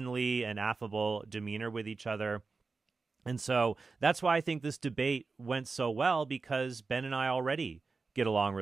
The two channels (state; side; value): quieter; left; 4.2 dB